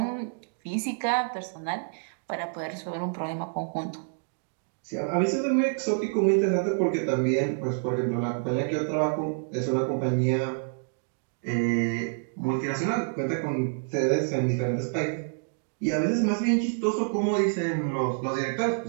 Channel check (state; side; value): silent; left; digital silence